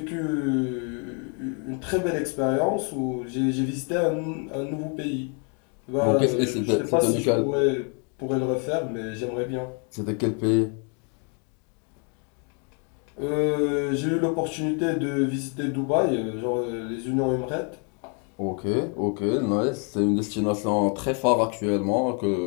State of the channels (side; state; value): right; quieter; 38.4 dB